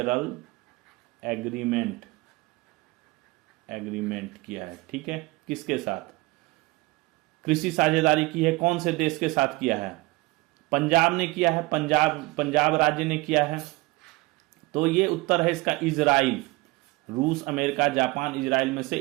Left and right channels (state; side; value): quieter; left; 22.6 dB